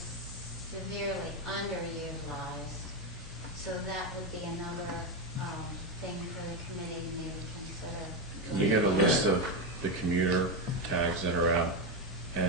severely underutilized. So that would be another thing for the committee to maybe consider. Can you get a list of the commuter tags that are out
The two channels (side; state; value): both; normal; correlation 0.09